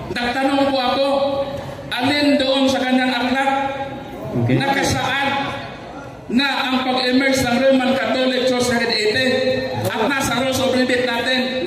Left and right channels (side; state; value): both; identical; correlation 1.00